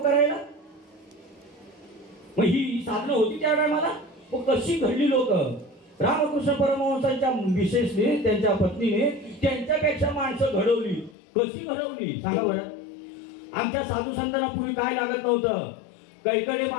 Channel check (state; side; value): drops out; right; at 11.2 s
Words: मग ही साधनं होती त्या टायमाला. कशी घडली लोक. रामकृष्ण परमहंसांच्या विशेषने त्यांच्या पत्नीने त्यांच्यापेक्षा माणसं घडवली. कशी घडवली सांगा बरं. आमच्या साधू संतांना पूर्वी काय लागत नव्हतं. कैकडे